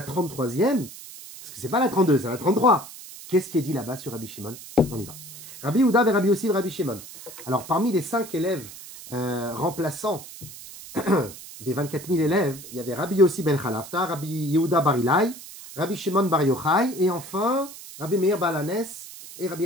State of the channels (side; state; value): right; noise; hiss, 15 dB below the sound